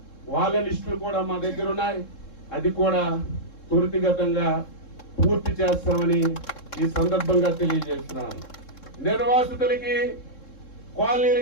వాళ్ళ లిస్టులు కూడా మా దగ్గర ఉన్నాయి. అది కూడా త్వరితగతంగా పూర్తి చేస్తామని ఈ సందర్భంగా తెలియజేస్తున్నాను. నిర్వాసితులకి కాలనీలు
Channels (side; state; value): right; late; 3.7 ms